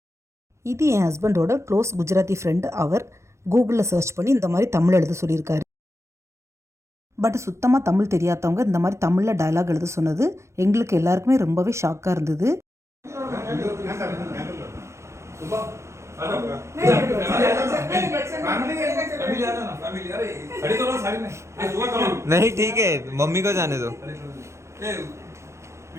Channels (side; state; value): left; late; 0.13 ms